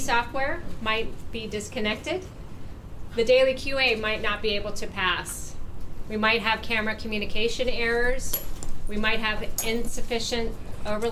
might be disconnected. The daily QA might not be able to pass. We might have camera communication errors. We might have insufficient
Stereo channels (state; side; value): identical; both; correlation 1.00